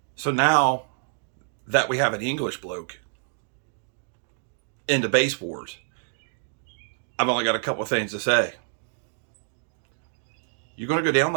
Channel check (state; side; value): silent; left; digital silence